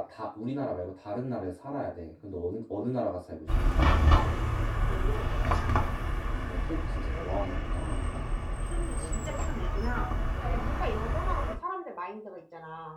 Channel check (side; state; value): both; identical; correlation 1.00